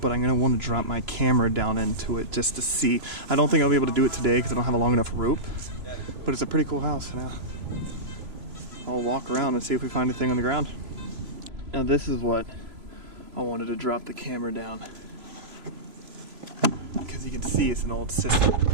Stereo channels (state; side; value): late; left; 3.0 ms